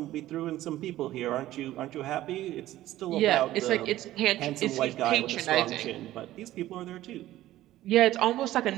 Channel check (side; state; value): left; quieter; 14.8 dB